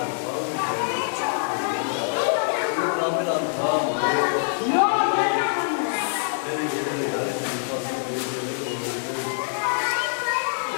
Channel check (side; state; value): right; silent; 62 dB below the other